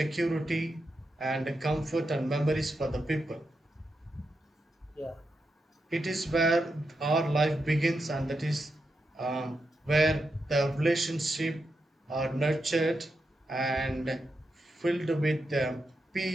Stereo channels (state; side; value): normal; both; correlation 0.86